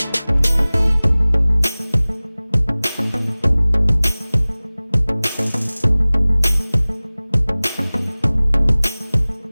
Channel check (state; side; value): inverted; both; correlation -0.99